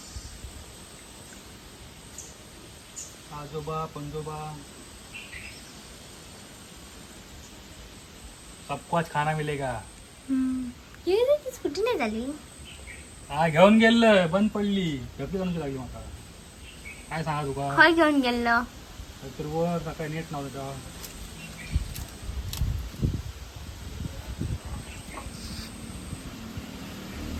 आजोबा पंजोबा सबको आज खाना मिलेगा. स्कूटी नाही झाली. हा घेऊन गेलं बंद पडली. गर्दी जणची लागली मला. काय सांगा तुका. खय घेऊन गेलो. तर वर सकाळी नेट नव्हतं.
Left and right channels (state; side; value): identical; both; correlation 1.00